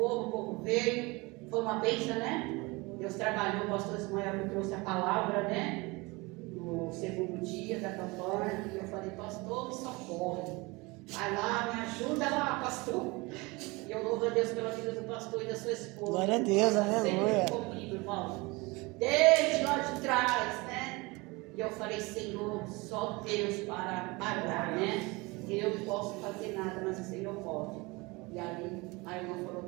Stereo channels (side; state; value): left; quieter; 24.7 dB